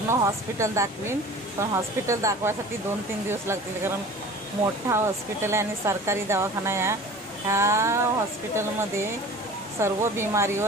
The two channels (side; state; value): both; normal; correlation 0.41